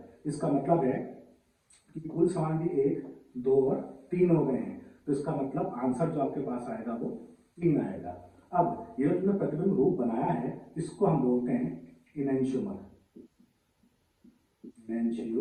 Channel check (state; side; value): identical; both; correlation 1.00